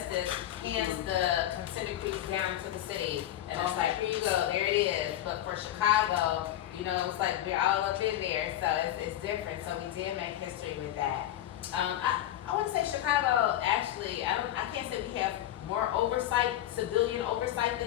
hands the consent decrees down to the city, and it's like, here you go, there it is. But for Chicago, you know, it's like we're all up in there, so it's different. So we did make history with that. I want to say Chicago, actually, I can't say we have more oversight, civilian oversight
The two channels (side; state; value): right; quieter; 12.8 dB